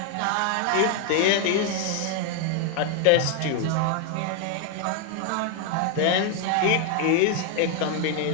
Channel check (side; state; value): both; different; correlation 0.01